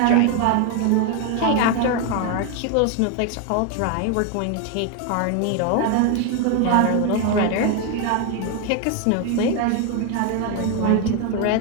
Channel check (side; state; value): both; different; correlation 0.01